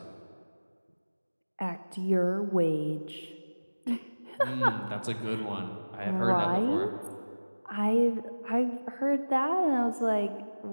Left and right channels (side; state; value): both; inverted; correlation -1.00